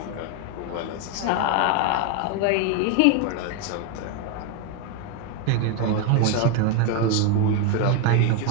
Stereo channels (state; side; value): different; both; correlation 0.01